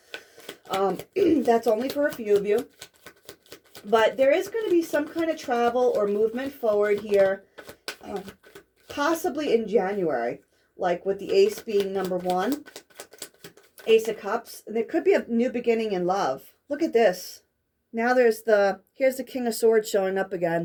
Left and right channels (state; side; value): identical; both; correlation 1.00